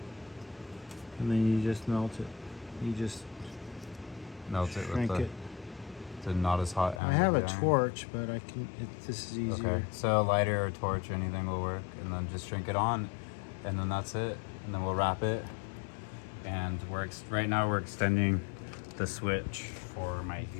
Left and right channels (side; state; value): right; drops out; at 7.0 s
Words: And then you just melt it. You just melt it with shrink the, it. the not as hot end. I have of a the iron. torch, but this is easier. Okay, so a lighter or torch or anything will work, and then just shrink it on, and then that's it. And then we'll wrap it, and right now we're extending the switch for my